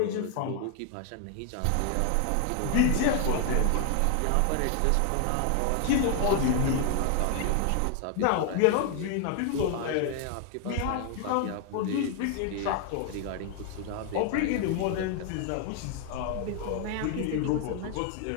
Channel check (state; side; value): different; both; correlation 0.00